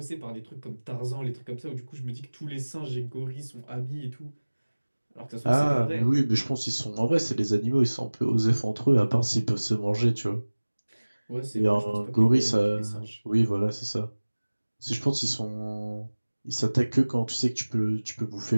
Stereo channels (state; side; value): inverted; both; correlation -1.00